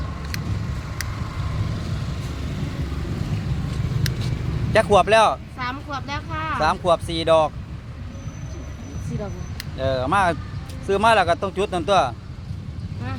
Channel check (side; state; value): both; identical; correlation 1.00